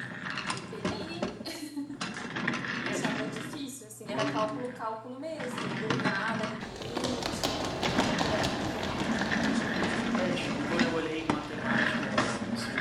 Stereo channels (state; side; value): identical; both; correlation 1.00